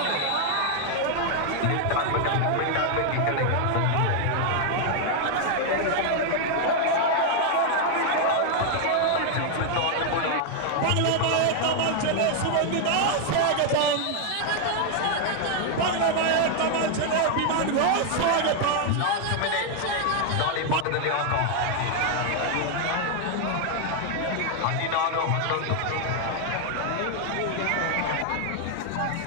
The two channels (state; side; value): different; both; correlation 0.00